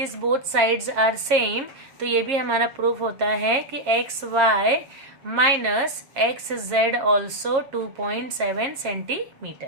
both sides are same तो ये भी हमारा प्रूफ होता है कि X Y minus X Z also 2.7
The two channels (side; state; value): left; late; 7.4 ms